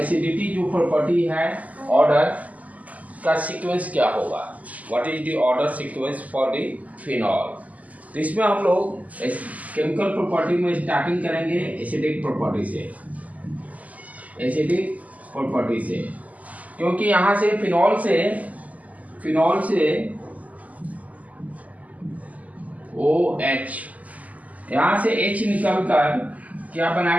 जो प्रॉपर्टी है, ऑर्डर का सीक्वेंस क्या होगा, what is the order sequence for the phenol. तो इसमें हम लोग केमिकल प्रॉपर्टी में स्टार्टिंग करेंगे एसिडिक प्रॉपर्टी से, क्योंकि यहाँ से फिनॉल से OH, यहाँ से H निकलकर क्या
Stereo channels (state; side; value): late; left; 0.075 ms